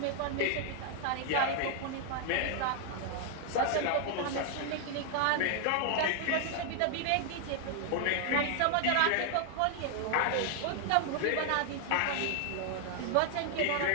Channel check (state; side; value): different; both; correlation 0.00